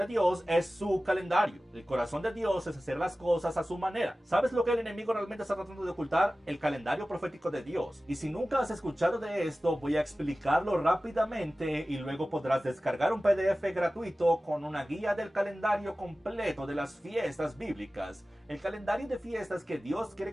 Dios es su calendario. El corazón de Dios es hacer las cosas a su manera. ¿Sabes lo que el enemigo realmente está tratando de ocultar? El calendario profético de Dios. Y si nunca has escuchado de esto, voy a explicarlo rápidamente y luego podrás descargar un PDF gratuito con una guía del calendario completo de las fiestas bíblicas. El calendario de fiestas que Dios quiere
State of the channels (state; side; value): normal; both; correlation 0.96